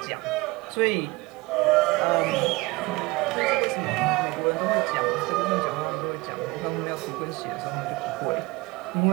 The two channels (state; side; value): quieter; left; 22.6 dB